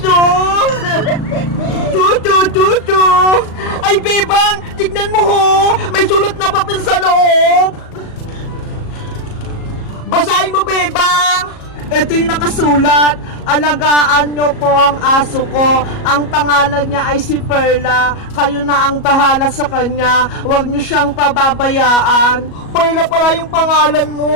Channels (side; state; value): right; late; 37 ms